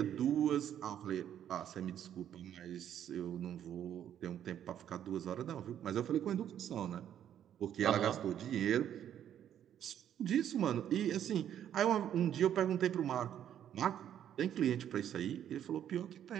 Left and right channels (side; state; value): left; quieter; 10.1 dB